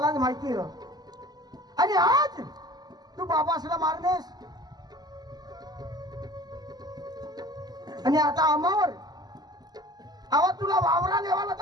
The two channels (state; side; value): late; left; 0.20 ms